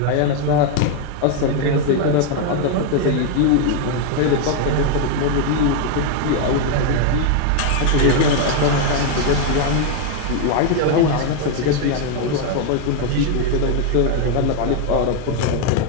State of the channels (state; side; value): different; both; correlation 0.01